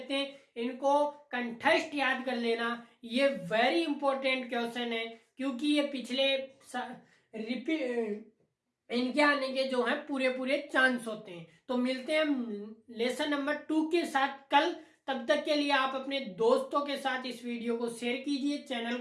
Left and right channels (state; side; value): identical; both; correlation 1.00